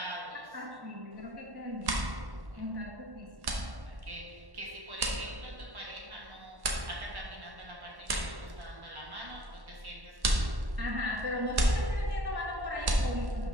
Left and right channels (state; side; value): late; left; 1.1 ms